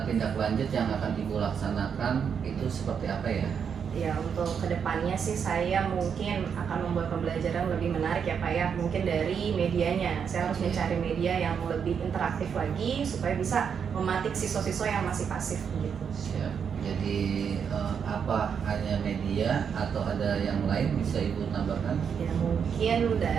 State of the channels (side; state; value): left; quieter; 7.1 dB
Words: tindak lanjut yang akan Ibu laksanakan itu seperti apa ya? Ya, untuk kedepannya sih saya mungkin akan membuat pembelajaran lebih menarik ya Pak ya. Mungkin dari medianya, saya harus mencari media yang lebih interaktif lagi supaya bisa mematik siswa-siswa yang masih pasif gitu. Siap. Jadi apa hanya media atau ada yang lain bisa Ibu tambahkan? Ya, mungkin